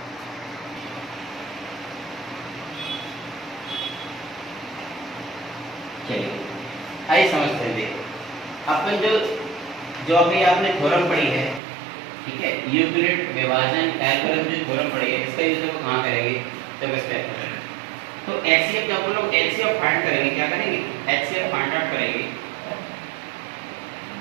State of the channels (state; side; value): drops out; left; at 11.6 s